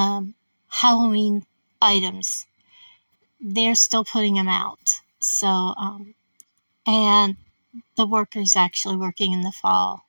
Halloween items. They're still putting them out. And the workers actually working in the fall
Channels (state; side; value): inverted; both; correlation -1.00